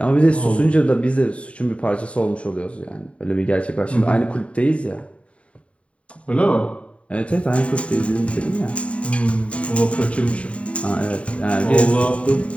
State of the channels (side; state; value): right; late; 0.063 ms